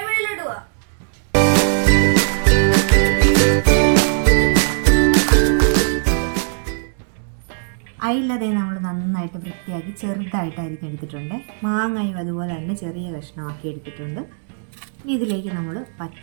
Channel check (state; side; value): silent; left; digital silence